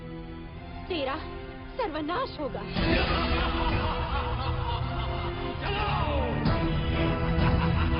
तेरा सर्वनाश होगा।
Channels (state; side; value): identical; both; correlation 1.00